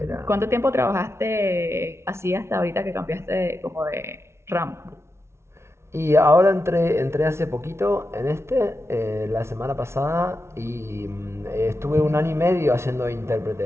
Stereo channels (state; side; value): late; left; 0.13 ms